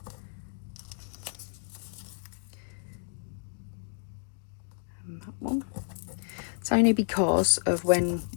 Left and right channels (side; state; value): right; silent; digital silence